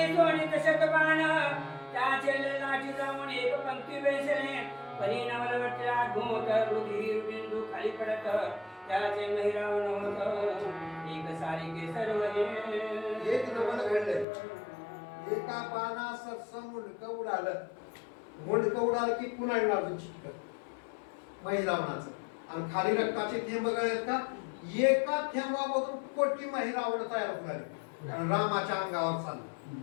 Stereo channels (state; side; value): drops out; right; at 14.2 s